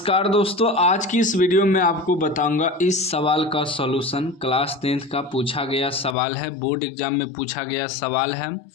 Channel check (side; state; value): right; drops out; at 6.2 s